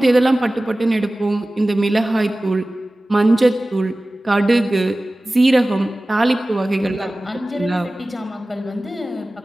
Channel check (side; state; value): both; normal; correlation 0.97